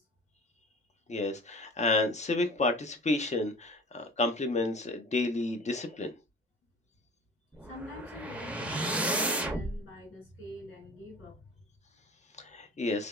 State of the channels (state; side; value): normal; both; correlation 0.41